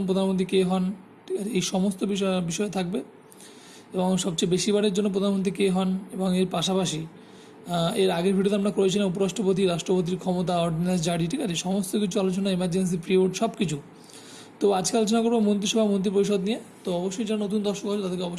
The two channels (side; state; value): both; identical; correlation 1.00